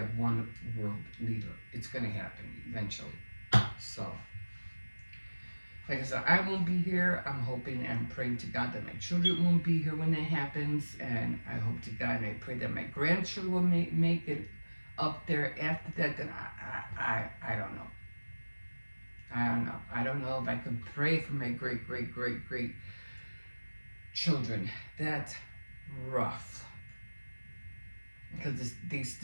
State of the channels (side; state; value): both; inverted; correlation -1.00